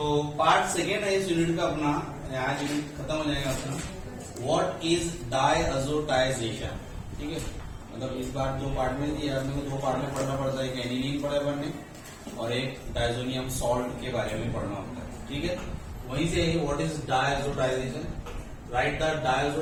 part second है इस यूनिट का अपना, आज यूनिट खत्म हो जाएगा अपना। व्हाट इज डायअज़ोटाइजेशन, ठीक है। मतलब इस बार दो पार्ट में दिया, अपने को दो पार्ट में पढ़ना पड़ता है, एक एनिलीन पढ़ा है पढ़ने और एक डायज़ोनियम सॉल्ट के बारे में पढ़ना होता है, ठीक है। वहीं से what is diazotization, right the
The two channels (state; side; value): identical; both; correlation 1.00